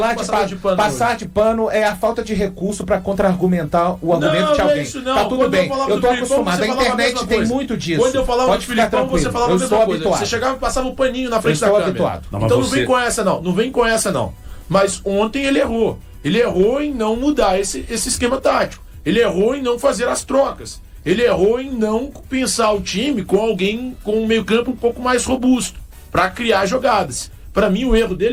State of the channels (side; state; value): both; identical; correlation 1.00